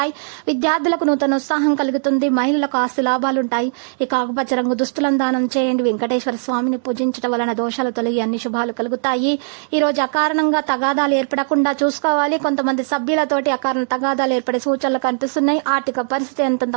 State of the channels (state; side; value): silent; left; 63 dB below the other